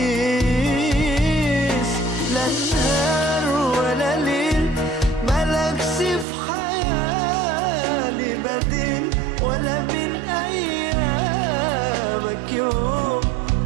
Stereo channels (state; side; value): drops out; left; at 6.2 s